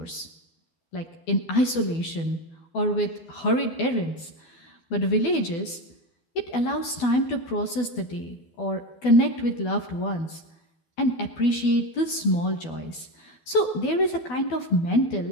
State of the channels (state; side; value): late; right; 12 ms